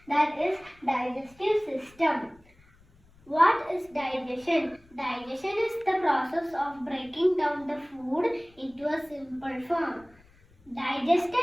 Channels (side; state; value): left; noise; rumble, 29 dB below the sound